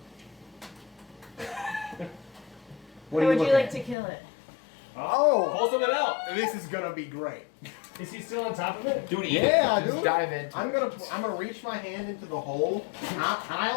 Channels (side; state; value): right; drops out; at 4.0 s